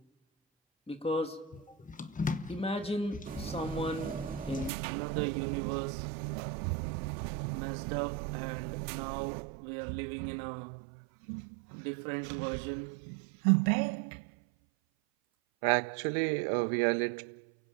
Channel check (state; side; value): drops out; left; at 4.7 s